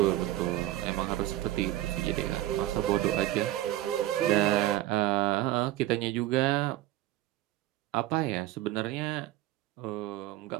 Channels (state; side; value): quieter; left; 15.2 dB